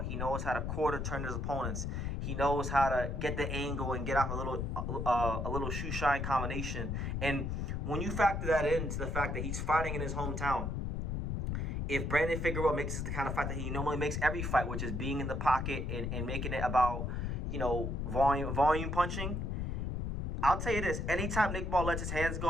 He knows how to quarter turn his opponents. He knows how to get the angle and get off a little shoe shine combination. And when you factor that into the fact that he's fighting in his hometown, if Brandon Figueroa makes it the kind of fight that he normally makes every fight, which is being in the pocket and making it about, you know, volume punching, I'll tell you this: anytime Nick Ball lets his hands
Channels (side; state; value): left; noise; rumble, 2 dB below the sound